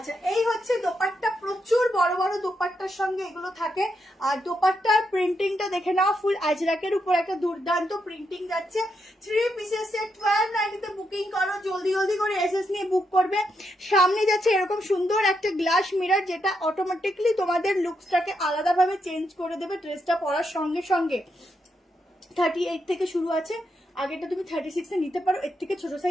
এই হচ্ছে দোপাট্টা, প্রচুর বড় বড় দোপাট্টার সঙ্গে এগুলো থাকে। আর দোপাট্টার প্রিন্টিংটা দেখে নাও, ফুল আজরাকের উপর একটা দুর্দান্ত প্রিন্টিং যাচ্ছে। 3 পিসের সেট 1290 বুকিং করো, জলদি জলদি করে এসএস নিয়ে বুক করবে। সামনে যাচ্ছে এরকম সুন্দর একটা গ্লাস মিরর, যেটা অটোমেটিকলি তোমাদের লুকসটাকে আলাদাভাবে চেঞ্জ করে দেবে ড্রেসটা পরার সঙ্গে সঙ্গে। 38 থেকে শুরু আছে, আগেটা তুমি 36 এ নিতে পারো, এর থেকে ছোট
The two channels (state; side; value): normal; both; correlation 0.82